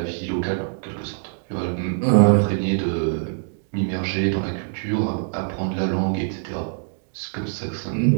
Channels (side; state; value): left; silent; digital silence